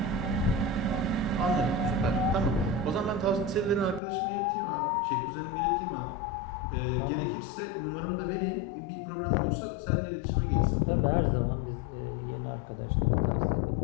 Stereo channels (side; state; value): right; drops out; at 4.0 s